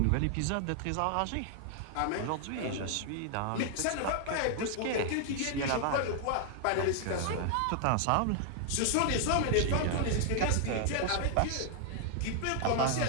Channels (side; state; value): both; different; correlation 0.00